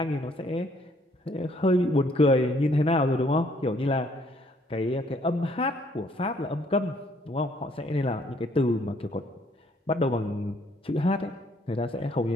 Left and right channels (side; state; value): both; normal; correlation 0.65